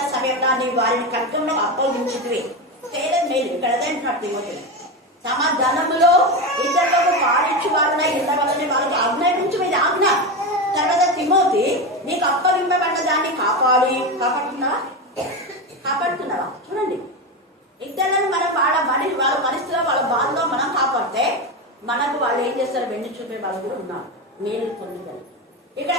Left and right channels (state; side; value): normal; both; correlation 0.17